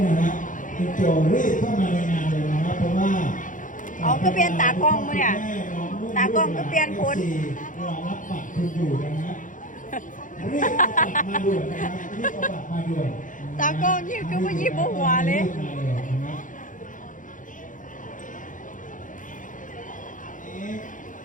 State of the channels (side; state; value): right; late; 0.38 ms